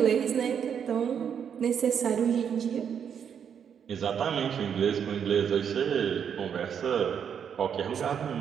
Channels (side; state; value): left; quieter; 7.9 dB